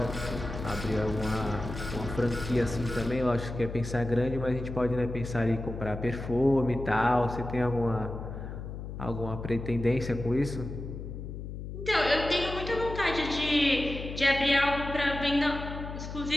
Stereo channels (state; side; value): noise; left; hum, 8 dB below the sound